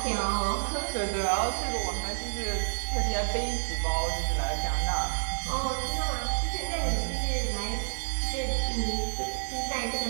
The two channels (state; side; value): silent; left; 58 dB below the other